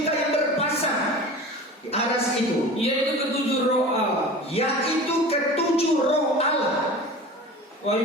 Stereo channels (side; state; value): both; normal; correlation 0.36